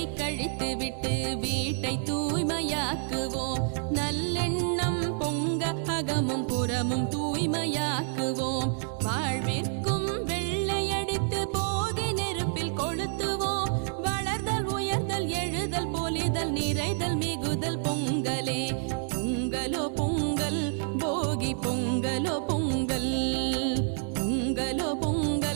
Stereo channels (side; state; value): left; silent; 59 dB below the other